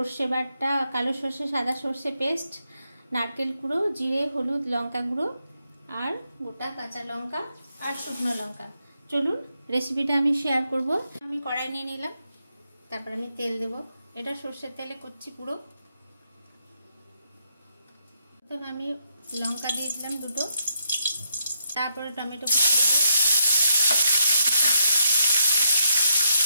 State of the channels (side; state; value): both; inverted; correlation -0.78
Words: बाटा, कालो सर्षे, सादा सर्षे पेस्ट, नारकेल कुड़ो, जिरे, हलुद, लंका गुड़ो और गोटा काँचा लंका और शुकनो लंका। चलुन रेसिपिटा आमि शेयर करब। आमि कड़ाई निये निलाम, तारपर आमि तेल देव। एटा सर्षेर तेले करछि पुरो। प्रथम आमि लंका दिये दिलाम दुटो, तारपरे टमेटो कुचि देव,